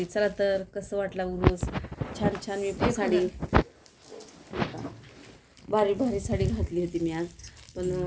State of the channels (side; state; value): both; identical; correlation 1.00